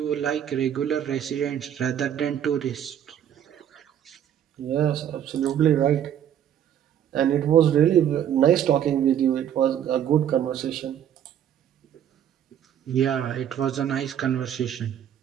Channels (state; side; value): quieter; left; 9.9 dB